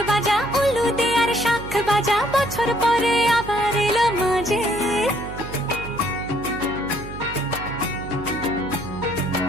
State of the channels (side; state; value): right; noise; hum, 11 dB below the sound